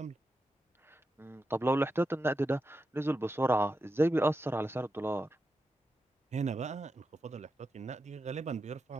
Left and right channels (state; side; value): normal; both; correlation 0.88